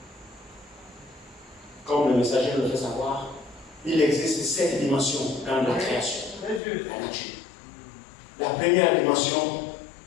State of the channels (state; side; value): drops out; right; at 6.6 s